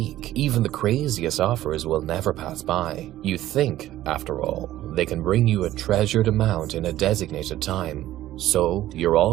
even the craziest offers will never pass by. You think, after all, they can bring you a treasured amount in a designated time. So, you're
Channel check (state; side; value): quieter; left; 14.3 dB